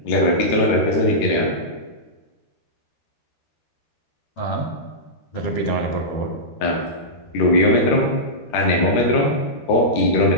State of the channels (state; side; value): late; right; 13 ms